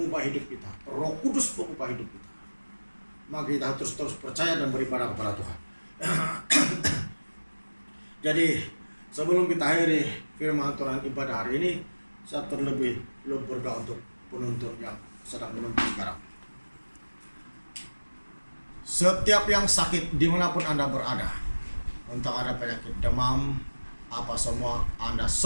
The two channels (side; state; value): both; inverted; correlation -1.00